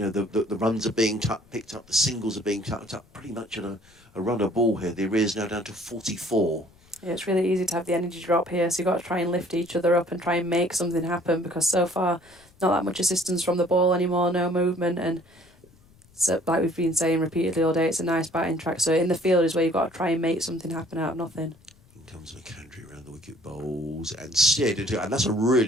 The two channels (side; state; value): left; noise; rumble, 29 dB below the sound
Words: runs are being picked up. The singles are being tucked up. Pretty much at a runner ball here. The arrears now down to 44. Yeah, it's really easy to have the energy drop here, so you've got to try and lift each other up and try and make something happen, because so far, not that much assistance from the ball anymore, no movement, and so, like we've been saying repeatedly all day, it's a nice batting track, so in the field is where you've got to try and make something happen out of nothing. In comes McAndrew around the wicket, bowls and steered into it, and that's a